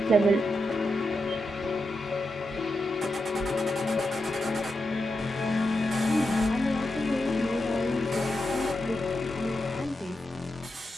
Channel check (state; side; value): normal; both; correlation 0.87